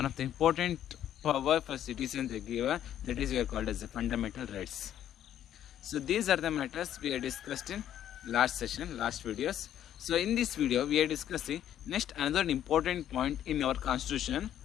of the important power for citizens they give, that is we are called as the fundamental rights. So these are the matters we have discussed in last session, last videos. So in this video we are discussing next another important point in our constitution,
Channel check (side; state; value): right; quieter; 10.9 dB